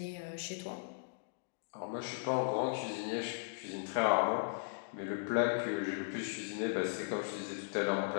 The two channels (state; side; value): silent; right; digital silence